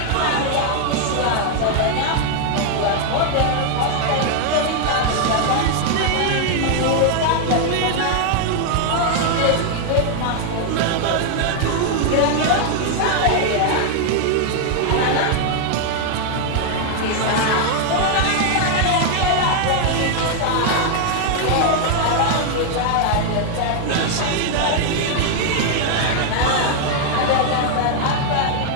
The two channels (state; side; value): different; both; correlation 0.00